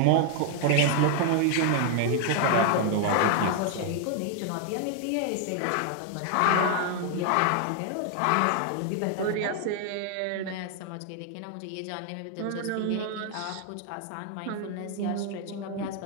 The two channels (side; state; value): both; different; correlation 0.00